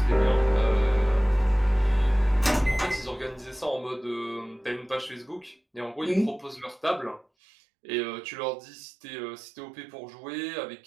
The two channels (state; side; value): drops out; left; at 7.2 s